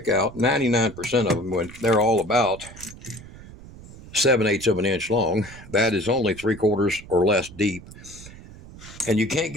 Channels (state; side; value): noise; right; rumble, 17 dB below the sound